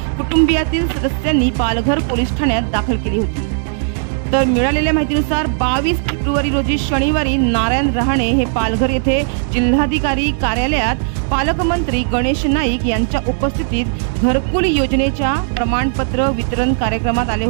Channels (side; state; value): left; silent; digital silence